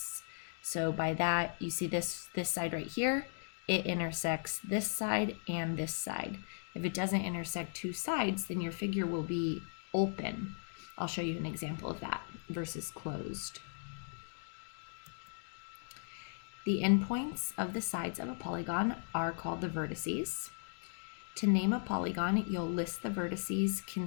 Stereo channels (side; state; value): right; silent; digital silence